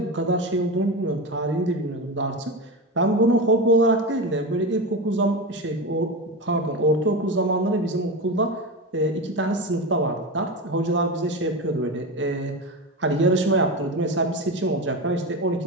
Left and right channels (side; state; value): both; normal; correlation 0.20